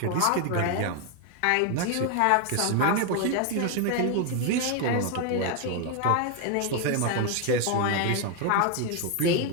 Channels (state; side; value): different; both; correlation 0.01